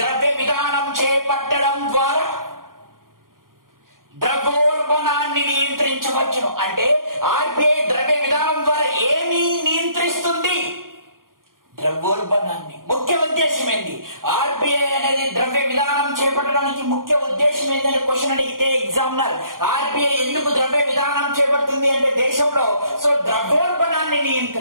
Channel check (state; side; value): late; left; 0.91 ms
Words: విధానం చేపట్టడం ద్వారా ద్రవ్యోల్బణాన్ని నియంత్రించవచ్చును. అంటే ఆర్బిఐ ద్రవ్య విధానం ద్వారా ఏమి నియంత్రిస్తుంది? ద్రవ్యోల్బణాన్ని. ముఖ్య ఉద్దేశం ఏంటి? ఆర్బిఐ అనేది ద్రవ్య విధానం చేపట్టడానికి ముఖ్య ఉద్దేశం ఏంటని క్వశ్చన్ అడిగితే ఎగ్జామినర్, ఆర్బిఐ ఎందుకు ద్రవ్య విధానం చేపడుతుంది అంటే దేశంలో ద్రవ్యోల్బణాన్ని